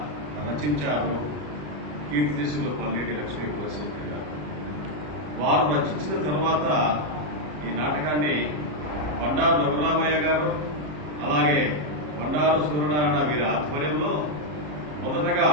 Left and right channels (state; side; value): late; left; 33 ms